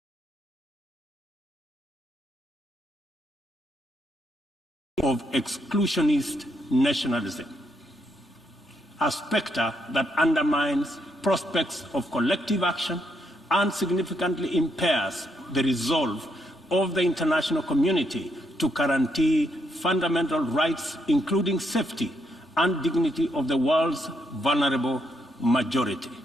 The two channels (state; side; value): normal; both; correlation 0.77